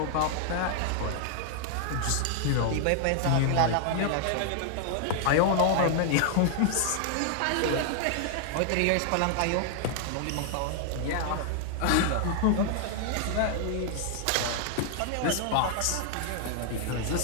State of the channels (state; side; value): different; both; correlation 0.00